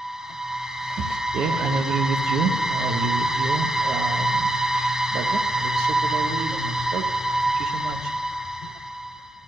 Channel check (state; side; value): normal; both; correlation 0.82